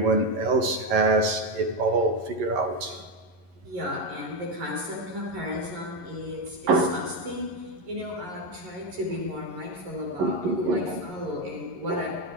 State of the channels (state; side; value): late; left; 11 ms